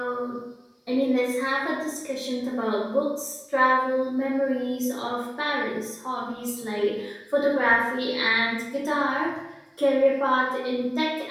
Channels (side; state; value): both; identical; correlation 1.00